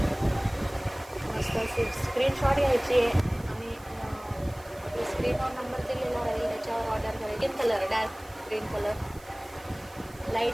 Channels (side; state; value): right; noise; hiss, 24 dB below the sound